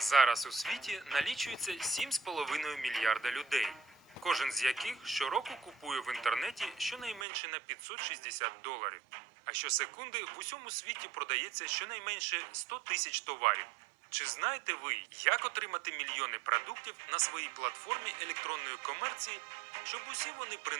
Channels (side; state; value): left; drops out; at 7.2 s